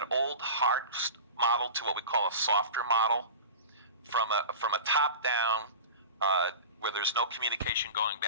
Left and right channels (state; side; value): inverted; both; correlation -0.32